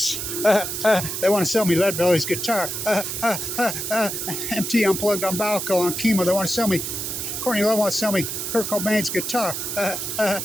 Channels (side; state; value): right; noise; hiss, 4 dB below the sound